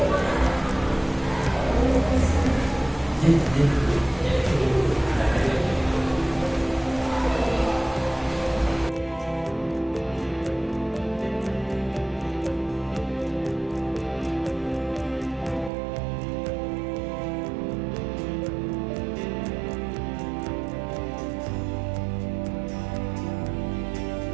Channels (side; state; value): left; drops out; at 15.7 s